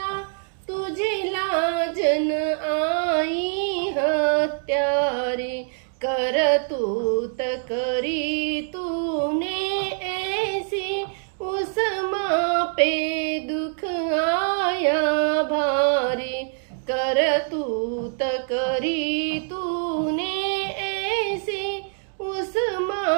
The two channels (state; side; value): silent; left; 59 dB below the other